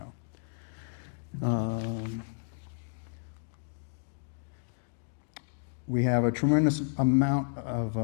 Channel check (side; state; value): right; silent; 57 dB below the other